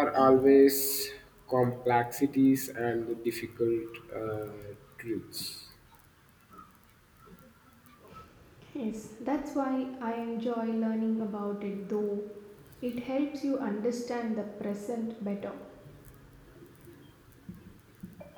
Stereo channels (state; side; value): identical; both; correlation 1.00